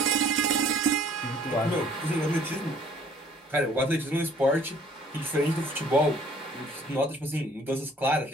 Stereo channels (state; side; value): normal; both; correlation 0.56